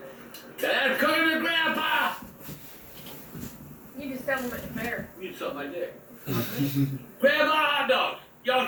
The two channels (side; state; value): both; identical; correlation 1.00